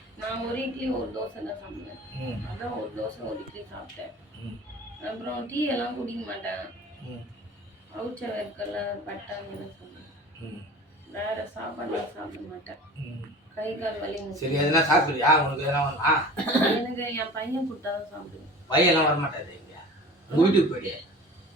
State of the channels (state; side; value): normal; both; correlation 0.41